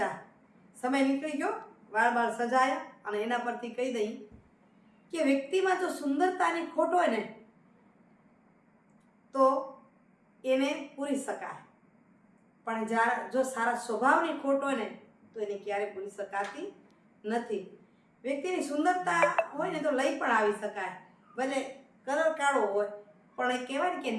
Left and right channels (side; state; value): both; identical; correlation 1.00